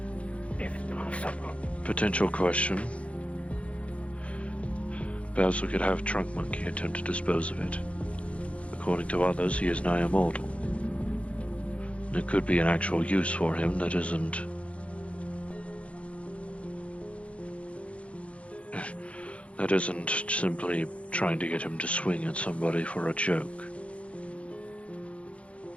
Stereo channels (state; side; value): late; right; 0.062 ms